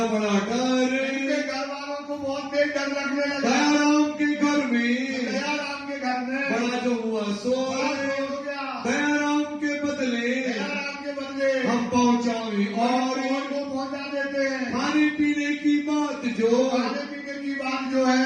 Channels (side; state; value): both; identical; correlation 1.00